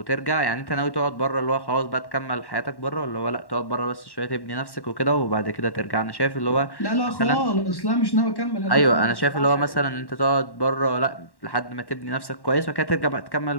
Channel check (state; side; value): late; right; 1.1 ms